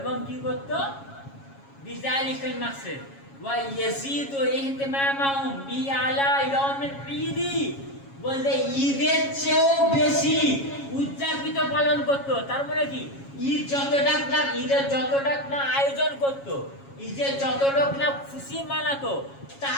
কি করত, বিযালিকাল মাকসাদ ওয়া ইয়াজিদু ইহতিমামাহুম বি আলা ইয়াউমিল ঈদ, বলতে ঈদের চেয়েও বেশি উদযাপিত পালন করত। তার মানে কি, ঈদের যতটা না আয়োজন করত, ঈদের যতটা না খুশি মানাতো,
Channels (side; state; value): right; late; 7.3 ms